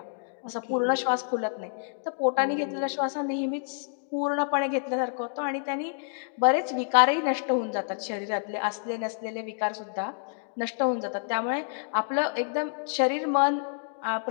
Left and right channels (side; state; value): right; silent; digital silence